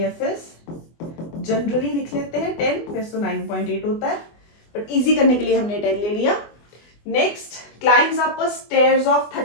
इज, जनरली लिख लेते हैं 10, वैसे तो 9.8 होता है, बट इजी करने के लिए हमने 10 ले लिया। Next, climbs up a stairs of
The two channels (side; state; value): right; late; 24 ms